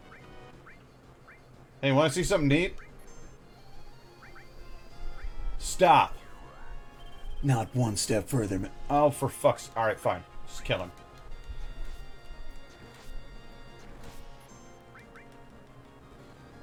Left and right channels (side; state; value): both; identical; correlation 1.00